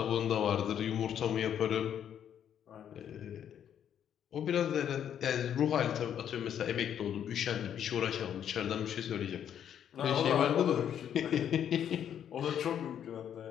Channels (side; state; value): right; quieter; 9.4 dB